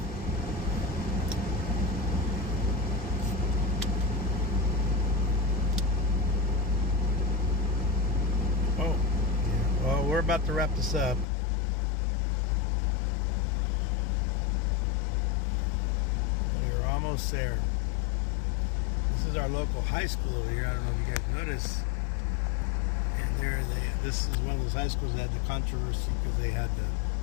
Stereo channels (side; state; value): right; drops out; at 11.2 s